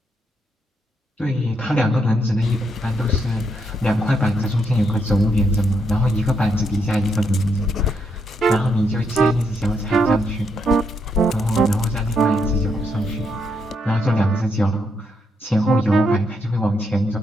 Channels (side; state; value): both; normal; correlation 0.78